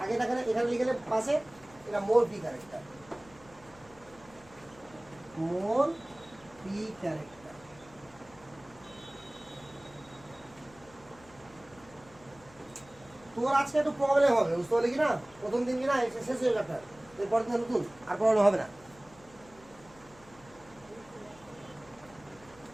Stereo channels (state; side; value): noise; left; hum, 24 dB below the sound